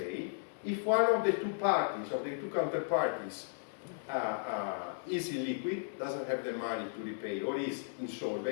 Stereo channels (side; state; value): right; silent; digital silence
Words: If one of the two parties, of the two counterparties, is illiquid, doesn't have the money to repay, or is